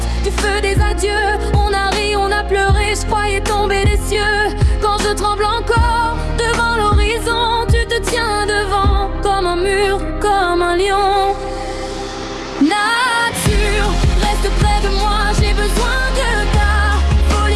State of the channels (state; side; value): identical; both; correlation 1.00